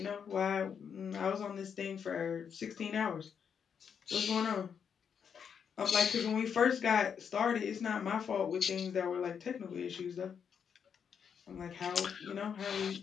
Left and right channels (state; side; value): quieter; right; 7.2 dB